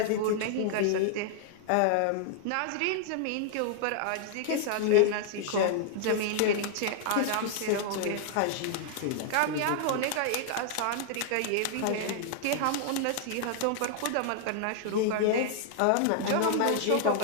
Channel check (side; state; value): both; different; correlation -0.01